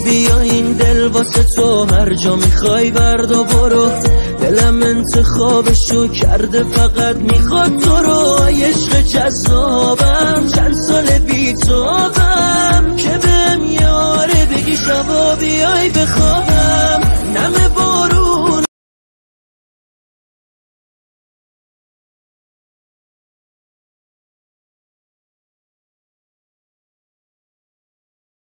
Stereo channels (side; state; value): both; inverted; correlation -1.00